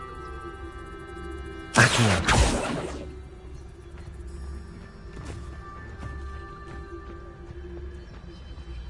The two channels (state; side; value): identical; both; correlation 1.00